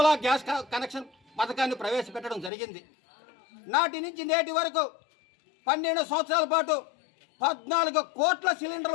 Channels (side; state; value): right; drops out; at 2.5 s